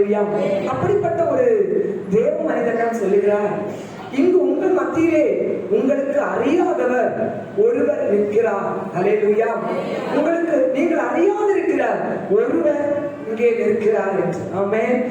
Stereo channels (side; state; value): both; identical; correlation 1.00